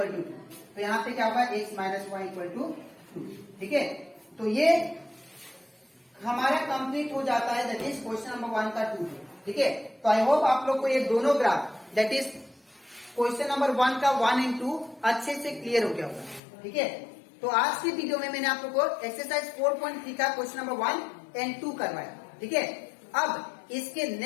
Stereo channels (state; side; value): drops out; right; at 16.4 s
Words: to 2। तो यहाँ पे क्या होगा, x minus y equal to 2। ठीक है, तो ये हमारा कंप्लीट हो जाता है, दैट इज क्वेश्चन नंबर 1 का 2। ठीक है, तो आई होप आप लोग को ये दोनों graph, that is question number 1 का 1 एंड 2 अच्छे से क्लियर हो गया होगा। ठीक है, तो आज की वीडियो में मैंने आप लोग को एक्सरसाइज 4.3 का क्वेश्चन नंबर 1 एंड 2 करवाया। ठीक है, अब इसके